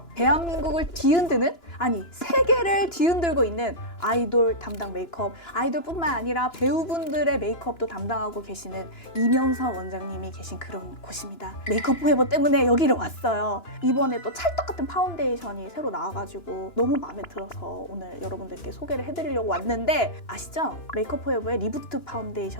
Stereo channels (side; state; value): right; late; 2.9 ms